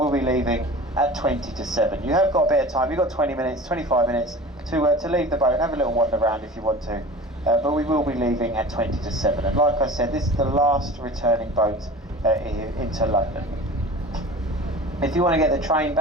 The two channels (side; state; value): both; normal; correlation 0.38